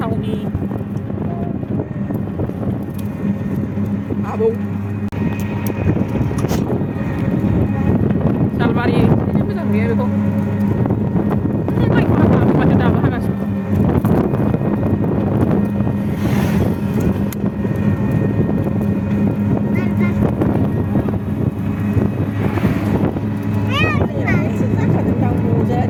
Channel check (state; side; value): identical; both; correlation 1.00